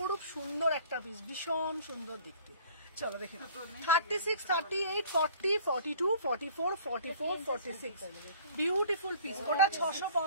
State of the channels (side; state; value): both; inverted; correlation -0.50